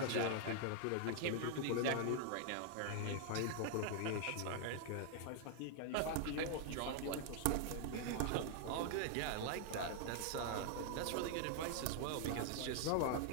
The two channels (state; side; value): different; both; correlation 0.00